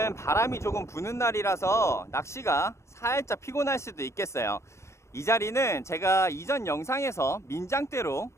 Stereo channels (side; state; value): right; late; 0.14 ms